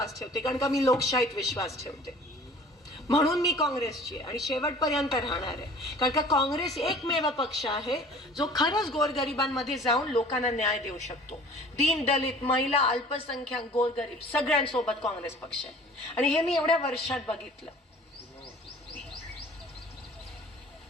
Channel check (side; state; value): both; normal; correlation 0.48